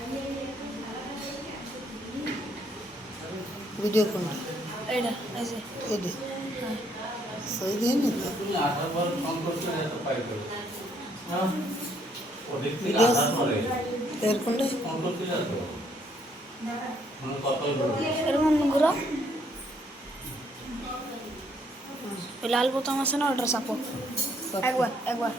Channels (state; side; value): normal; both; correlation 0.69